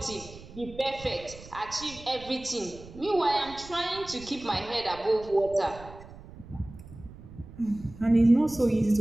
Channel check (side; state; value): right; noise; rumble, 17 dB below the sound